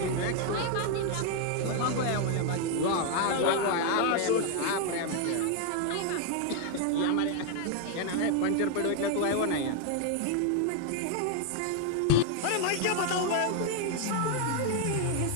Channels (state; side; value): different; both; correlation 0.00